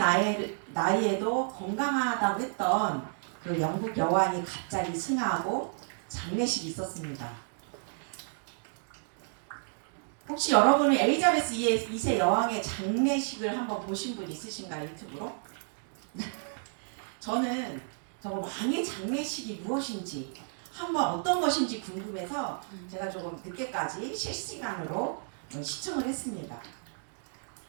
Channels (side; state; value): left; silent; digital silence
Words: 나이에도 건강하다고 했던 그 영국 여왕이 갑자기 승하하고 장례식이 있었습니다. 혹시 여러분은 엘리자베스 2세 여왕의 장례식을 한번 보신 분 있으신가요? 유튜브로? 저는 정말 왕의 장례식이 무엇인지 한번 어떤 것인지 궁금해서 제가 조금 늦게까지 실시간으로 시청을 했습니다.